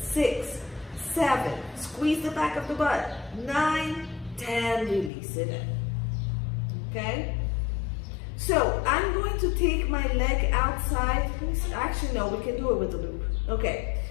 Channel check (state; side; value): drops out; right; at 5.1 s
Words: 6, 7. Squeeze the back of the butt. 9, 10. Release it in. Okay? So I'm going to take my leg outside. Actually, no, we can do it with the loop. Okay.